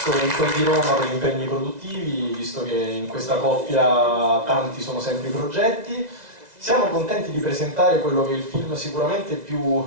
in quel di Roma per gli impegni produttivi, visto che in questa coppia tanti sono sempre i progetti. Siamo contenti di presentare quello che è il film sicuramente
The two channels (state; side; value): late; left; 2.0 ms